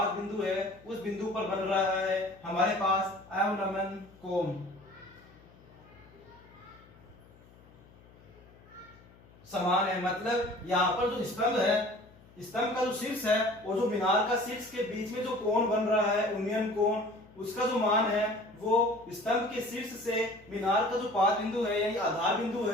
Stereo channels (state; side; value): noise; left; hum, 25 dB below the sound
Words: बिंदु है उस बिंदु पर बन रहा है हमारे पास अवनमन कोण। समान है, मतलब यहाँ पर जो स्तंभ है, स्तंभ का जो शीर्ष है और जो मीनार का शीर्ष के बीच में जो कोण बन रहा है उन्नयन कोण, उसका जो मान है वो स्तंभ के शीर्ष से मीनार का जो पाद बिंदु है यानी आधार बिंदु